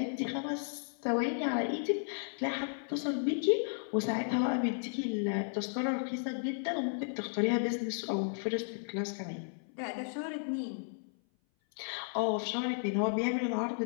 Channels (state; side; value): silent; right; 55 dB below the other